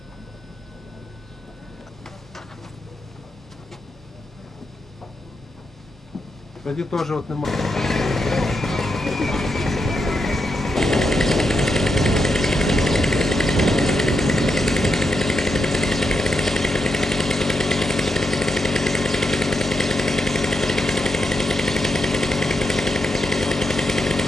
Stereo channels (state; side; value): normal; both; correlation 0.84